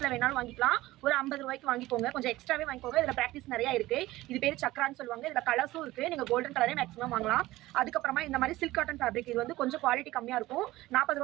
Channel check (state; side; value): quieter; left; 17.6 dB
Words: வேணாலும் வாங்கிக்கலாம். ஒரு 50 ரூபாய்க்கு வாங்கிக்கோங்க. கொஞ்சம் எக்ஸ்ட்ராவே வாங்கிக்கோங்க. இதுல பிராக்டிஸ் நிறைய இருக்கு. இது பேர் சக்ரான்னு சொல்லுவாங்க. இதுல கலர்ஸும் இருக்கு. நீங்க கோல்டன் கலரே மேக்ஸிமம் வாங்கலாம். அதுக்கப்புறமா இந்த மாதிரி சில்க் காட்டன் ஃபேப்ரிக். இது வந்து கொஞ்சம் குவாலிட்டி கம்மியா இருக்கும். 40